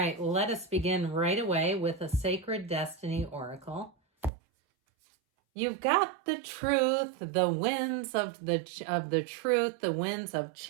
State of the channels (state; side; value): drops out; left; at 4.3 s